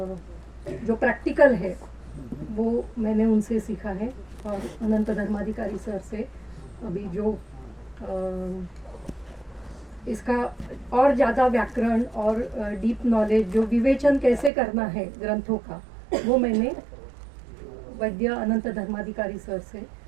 जो प्रैक्टिकल है वो मैंने उनसे सीखा है। और अनंत धर्माधिकारी सर से अभी जो इसका और ज़्यादा व्याकरण और डीप नॉलेज, जो विवेचन कैसे करना है ग्रंथों का, वो मैंने वैद्य अनंत धर्माधिकारी सर से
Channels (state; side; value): drops out; left; at 14.5 s